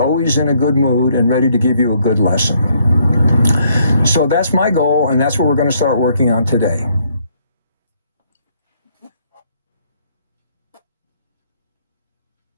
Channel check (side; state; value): both; inverted; correlation -0.69